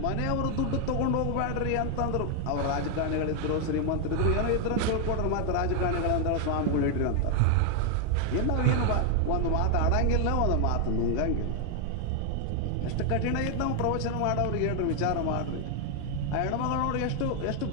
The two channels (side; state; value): both; different; correlation 0.00